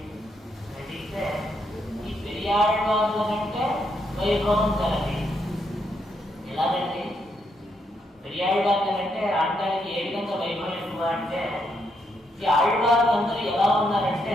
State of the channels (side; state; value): both; normal; correlation 0.77